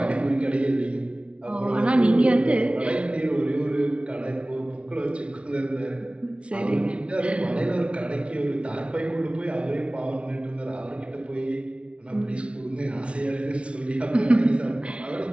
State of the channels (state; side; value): late; left; 0.060 ms